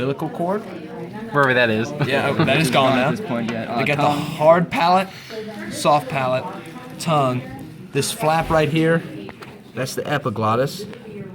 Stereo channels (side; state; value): both; identical; correlation 1.00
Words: cord. Wherever that is. Yeah, that is gone now. At this point, yeah. They got the Tongue. hard palate, soft palate, tongue. This flap right here, that's the epiglottis.